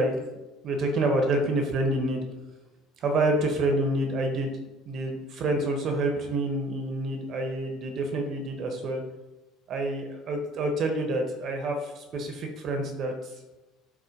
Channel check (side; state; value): both; normal; correlation 0.53